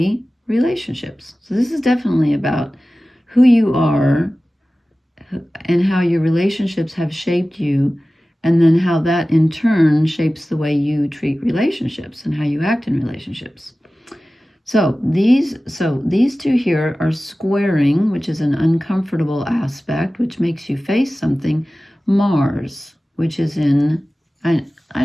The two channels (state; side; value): normal; both; correlation 0.96